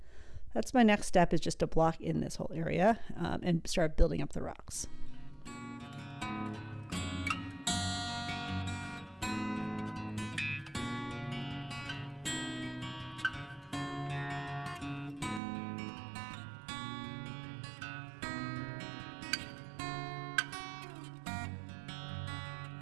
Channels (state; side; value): drops out; left; at 15.4 s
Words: that's my next step, is just to block in this whole area and start building up the rocks.